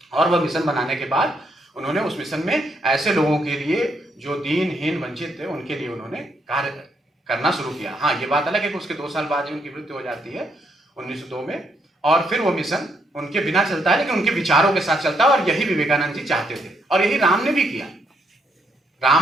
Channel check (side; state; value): both; normal; correlation 0.75